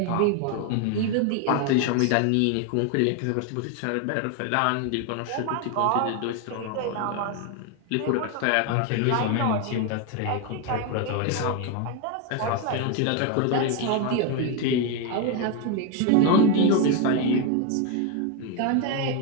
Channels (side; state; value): both; different; correlation 0.01